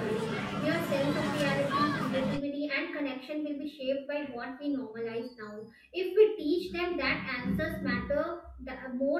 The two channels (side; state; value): both; identical; correlation 1.00